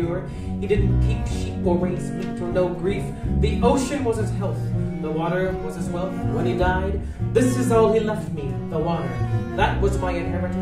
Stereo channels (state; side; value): identical; both; correlation 1.00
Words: He didn't keep sheep or raise meat or know grief. The ocean was his health, the water was his wealth. When he died, this is all he left me, the water. That was my